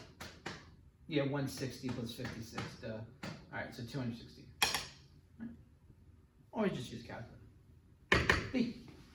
Yeah, 160 plus 56. All right, so 260. Right. Always just use calculator. B.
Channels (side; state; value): both; identical; correlation 1.00